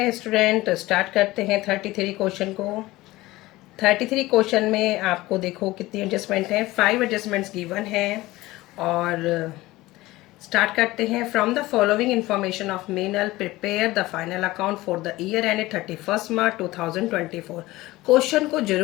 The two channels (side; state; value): right; quieter; 18.7 dB